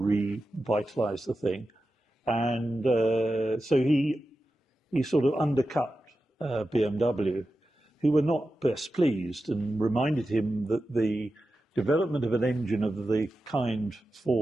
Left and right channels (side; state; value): both; normal; correlation 0.92